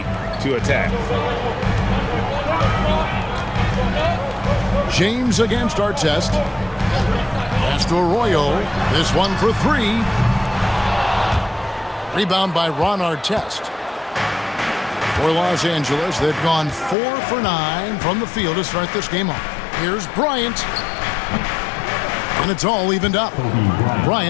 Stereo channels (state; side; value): drops out; right; at 16.9 s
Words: to attack. James against Artest. Pass to Arroyo. This one for 3. Rebound by Ron Artest. For Los Angeles, they've gone 4 for 9 from the field to start this game off. Here's Bryant. And it's all evened up.